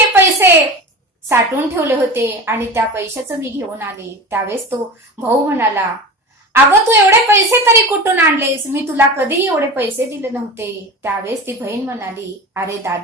पैसे साठवून ठेवले होते आणि त्या पैशाचं मी घेऊन आले. त्यावेळेस तो भाऊ म्हणाला, अगं तू एवढे पैसे तरी कुठून आणलेस? मी तुला कधीही एवढे पैसे दिले नव्हते. त्यावेळेस ती बहीण म्हणाली, अरे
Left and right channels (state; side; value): normal; both; correlation 0.30